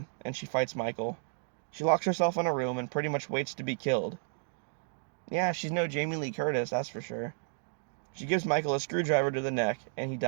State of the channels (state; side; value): silent; left; 56 dB below the other